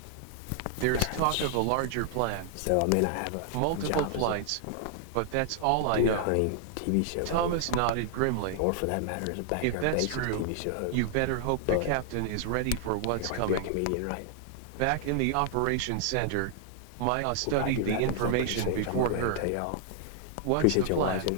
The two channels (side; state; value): both; different; correlation 0.00